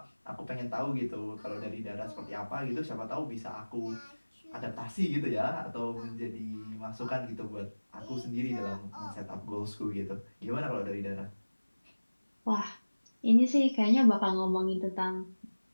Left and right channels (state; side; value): inverted; both; correlation -1.00